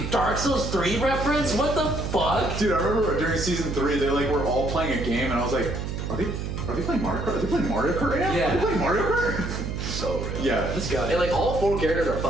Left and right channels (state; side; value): noise; right; hum, 4 dB below the sound